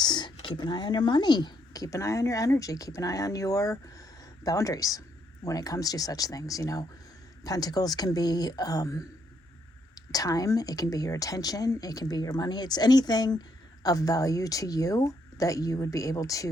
keep an eye on your money, keep an eye on your energy, keep an eye on your boundaries when it comes to such things. Pentacles can be time, it can be your attention, it can be your money. It's anything of value to you that you would be able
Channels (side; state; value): both; normal; correlation 0.74